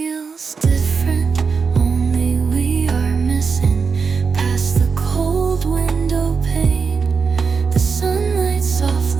different, only we are missing past the cold window pane. The sunlight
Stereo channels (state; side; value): quieter; left; 5.3 dB